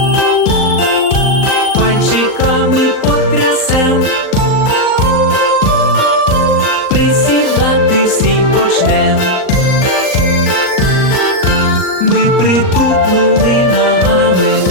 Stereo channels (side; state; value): right; late; 38 ms